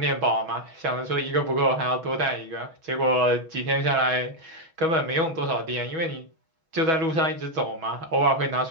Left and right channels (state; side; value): late; left; 6.2 ms